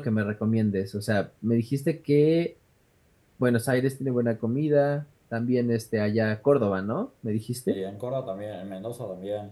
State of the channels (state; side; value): identical; both; correlation 1.00